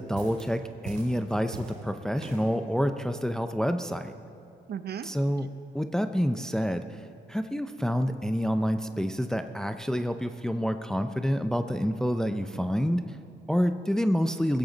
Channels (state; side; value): normal; both; correlation 0.96